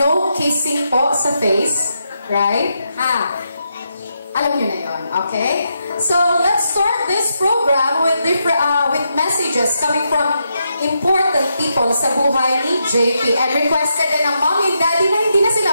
kissing po sa face, right? Alam nyo na yun, okay? So let's start this program with with messages coming from important people sa buhay ni JP, and requested din ng mommy and daddy na hindi na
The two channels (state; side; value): inverted; both; correlation -0.83